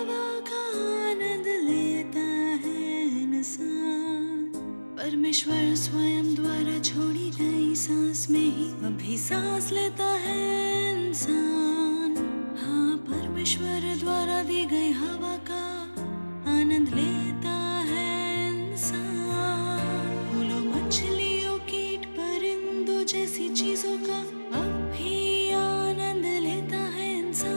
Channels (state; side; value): inverted; both; correlation -1.00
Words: का आनंद लेता है इंसान, परमेश्वर स्वयं द्वारा छोड़ी गई सांस में ही अभी सांस लेता है इंसान। हाँ, परमेश्वर द्वारा दी गई हवा का आनंद लेता है इंसान। फूलों, मछलियों, कीट, परिंदों जैसी चीजों का अब भी आनंद लेता है